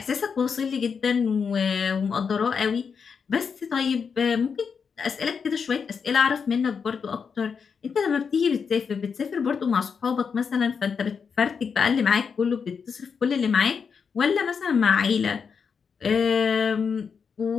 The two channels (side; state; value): right; quieter; 6.1 dB